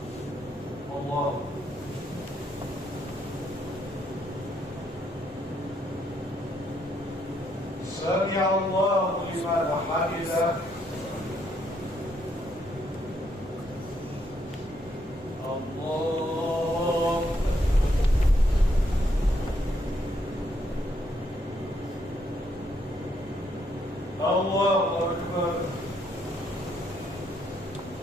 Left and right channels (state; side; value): normal; both; correlation 0.74